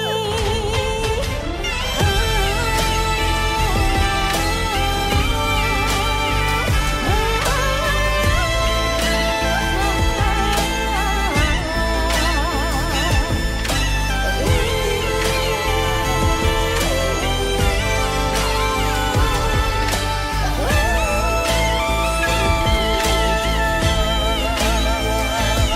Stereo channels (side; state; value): both; identical; correlation 1.00